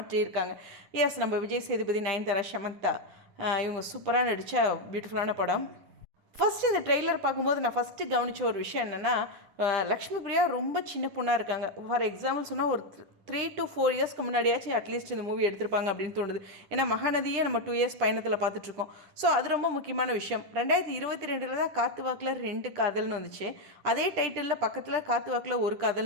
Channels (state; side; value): late; left; 10 ms